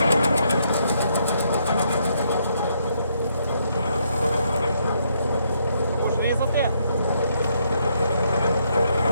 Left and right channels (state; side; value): inverted; both; correlation -0.74